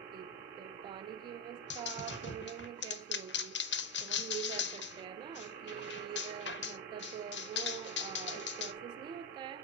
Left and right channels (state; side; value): normal; both; correlation 0.06